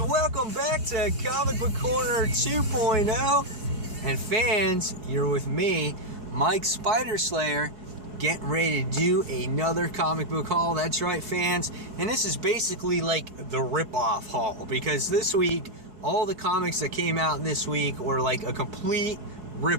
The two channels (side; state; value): left; late; 4.7 ms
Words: back to Comic Book Corner 2.0. And fans, you're with me, Mike Spider Slayer, getting ready to do another comic book haul. That's right, fans. And this is basically like the rip-off haul, because this week, all the comics that came out this week were like a complete